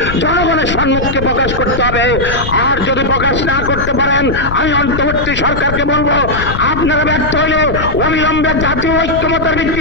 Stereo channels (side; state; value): left; noise; rumble, 6 dB below the sound